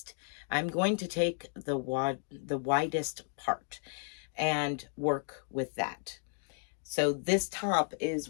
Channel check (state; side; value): silent; right; 55 dB below the other